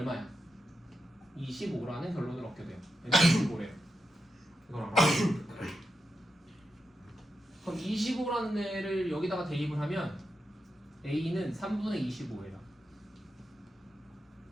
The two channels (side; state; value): both; normal; correlation 0.87